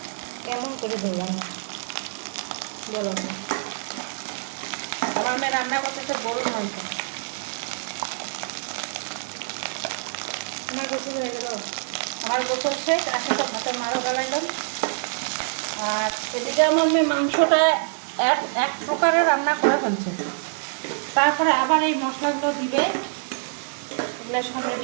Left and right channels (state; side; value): silent; left; digital silence